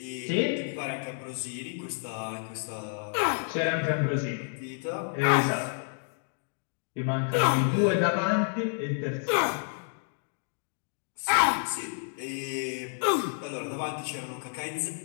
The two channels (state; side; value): silent; right; 58 dB below the other